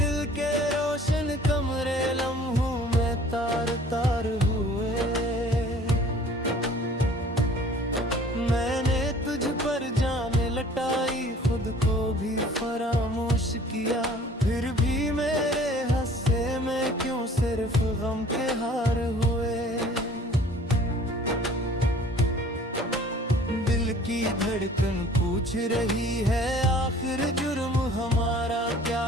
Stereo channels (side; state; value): both; normal; correlation 0.51